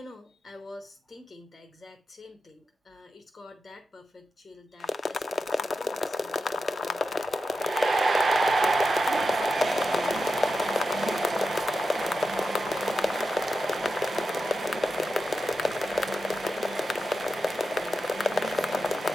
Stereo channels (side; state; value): both; normal; correlation 0.89